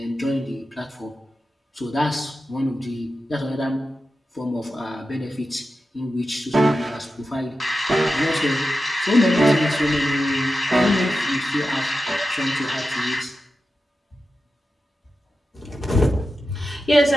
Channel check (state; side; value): normal; both; correlation 0.91